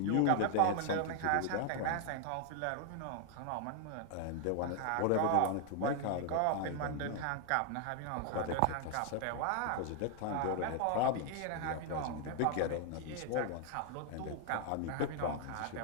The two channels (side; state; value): both; different; correlation 0.00